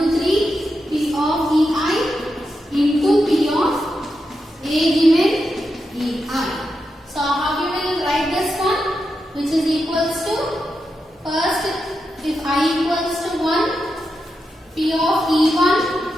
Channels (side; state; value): both; normal; correlation 0.87